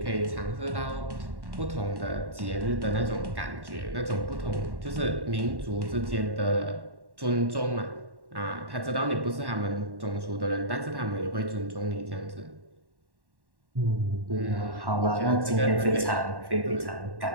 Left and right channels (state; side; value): late; left; 1.1 ms